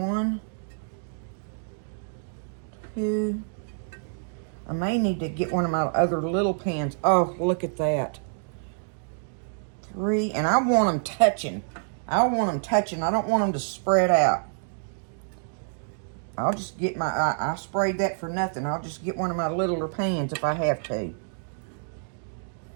2. I may need to get one of my other little pans. Oh, look at that. 3, and I want them touching. I want them touching. I don't want them to spread out. I'll just get my, I sprayed that for nothing. I'll just get one of my littler pans if I have to.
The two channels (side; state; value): left; silent; digital silence